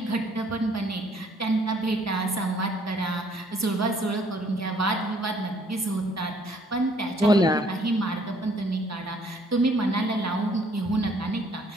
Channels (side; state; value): both; normal; correlation 0.62